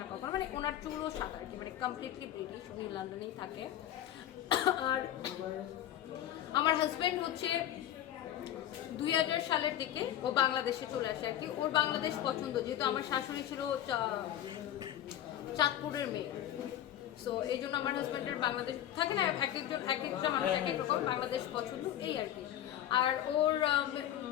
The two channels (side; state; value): right; quieter; 11.8 dB